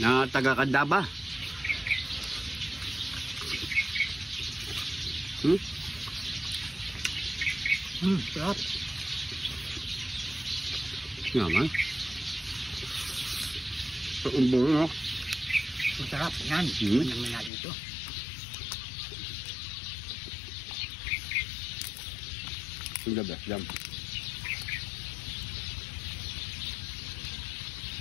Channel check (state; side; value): drops out; right; at 17.5 s